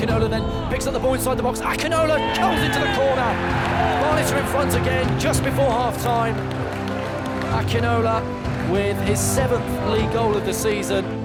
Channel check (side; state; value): both; identical; correlation 1.00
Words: then picks up the ball inside the box. Akinola comes into the corner. Barnet are in front again just before half-time. Akinola with his 7th league goal of the season.